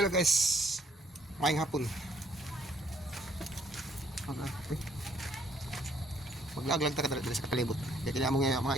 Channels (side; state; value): both; normal; correlation 0.65